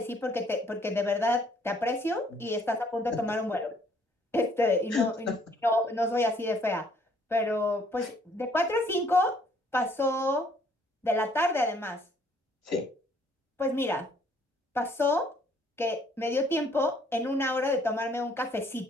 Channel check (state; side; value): normal; both; correlation 0.63